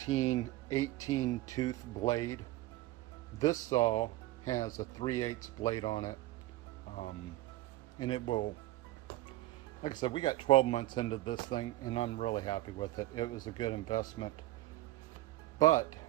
tooth blade. This saw has a 3/8 blade on it, and it will, like I said, we got 12 months into this thing, and I'm really happy with it. It was a good investment. But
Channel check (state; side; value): quieter; left; 16.8 dB